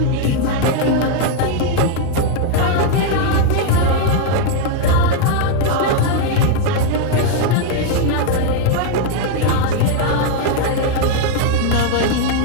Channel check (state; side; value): different; both; correlation 0.00